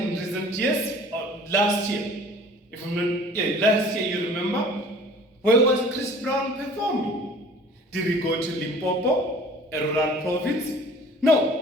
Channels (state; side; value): normal; both; correlation 0.48